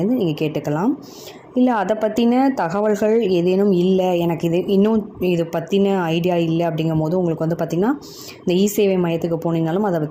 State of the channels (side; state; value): both; identical; correlation 1.00